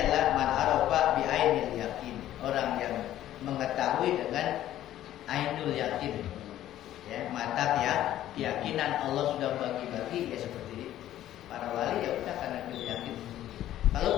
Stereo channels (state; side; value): quieter; right; 12.9 dB